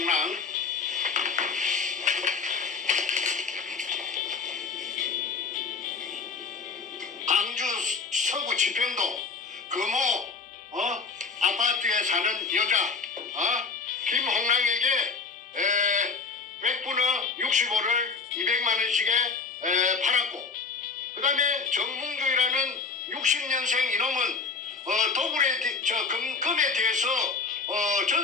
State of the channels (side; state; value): right; quieter; 4.9 dB